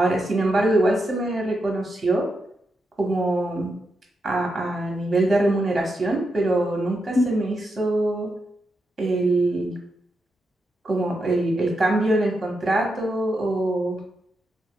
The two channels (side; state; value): both; normal; correlation 0.85